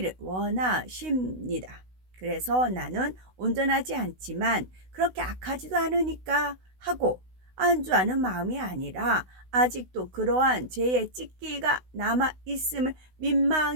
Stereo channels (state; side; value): late; left; 16 ms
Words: 원하십니다. 그래서 나는 온전하지 않지만 그렇게 악하지도 않으니까 하고 안주하는 마음이 아니라 아직도 그러한 죄의 찢기가 남아있음을